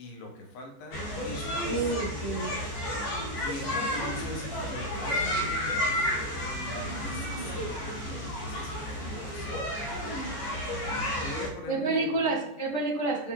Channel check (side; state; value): right; late; 14 ms